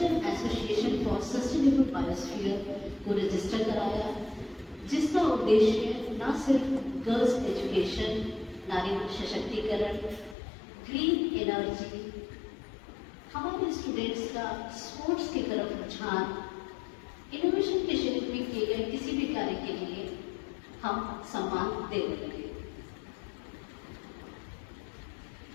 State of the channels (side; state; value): right; drops out; at 10.4 s